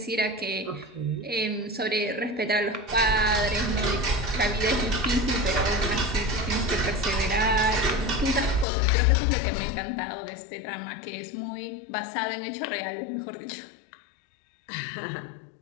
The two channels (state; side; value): drops out; right; at 8.7 s